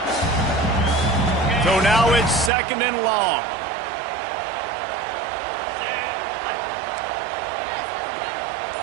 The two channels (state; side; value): drops out; left; at 2.5 s